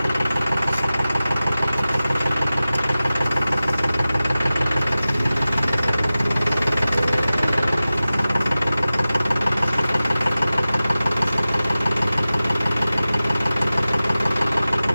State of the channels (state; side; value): inverted; both; correlation -0.96